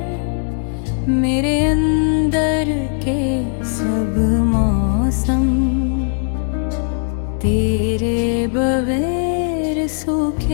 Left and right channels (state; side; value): silent; right; digital silence